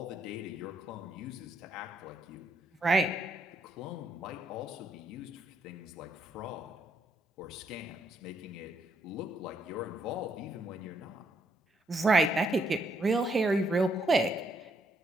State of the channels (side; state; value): both; normal; correlation 0.74